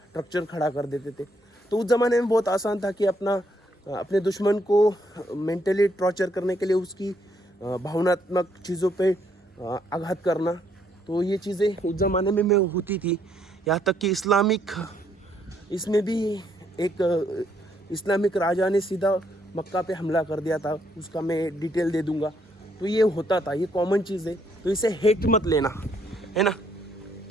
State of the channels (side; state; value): both; normal; correlation 0.71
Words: खड़ा कर देते थे। तो उस ज़माने में बहुत आसान था कि अपने दुश्मन को मेंटली टॉर्चर करने के लिए उसकी भावनात्मक चीज़ों पे आघात करना। तो ये चीज़ें उस ज़माने में होती थी। यहाँ तक कि इसमें भी एक इस्लामिक राजा ने सीधा मक्का पे हमला कर दिया था, उसका मैं डिटेल दे दूंगा। तो ये होता था, ये कॉमन चीज़ है, तो इसे हेट मत लेना, है ना।